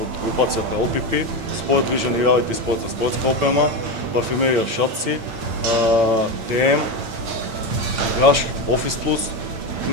групацијата LPP, спорт движен и реалити спорт за спортска опрема, парфюмерија Шатци, ТМ, Граш, Офис Плюс,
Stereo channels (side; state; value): left; late; 8.8 ms